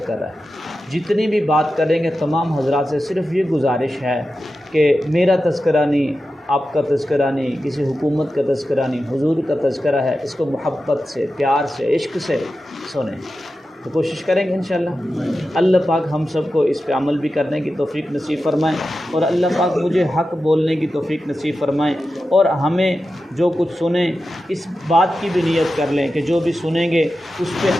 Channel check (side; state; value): both; normal; correlation 0.92